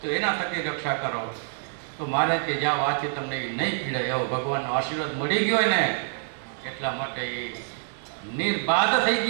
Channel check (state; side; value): silent; left; 61 dB below the other